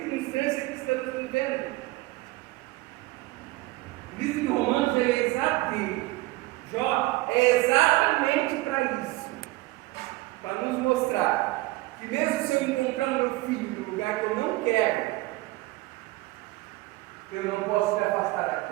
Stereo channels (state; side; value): quieter; left; 20.1 dB